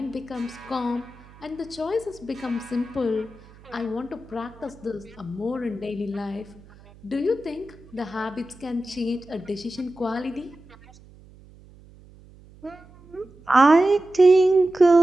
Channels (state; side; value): noise; right; hum, 24 dB below the sound